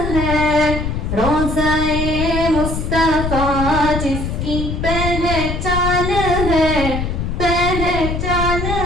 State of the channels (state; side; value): noise; left; rumble, 3 dB below the sound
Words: روضہ مصطفیٰ جس کی پہچان ہے، پہچان